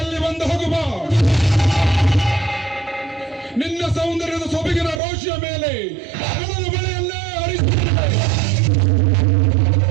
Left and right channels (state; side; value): drops out; left; at 5.0 s